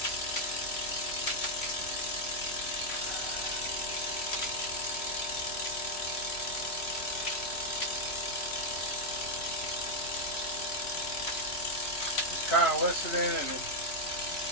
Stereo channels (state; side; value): late; right; 3.0 ms